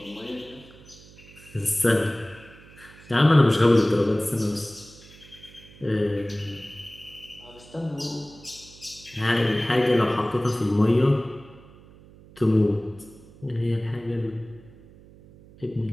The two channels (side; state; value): right; noise; hum, 22 dB below the sound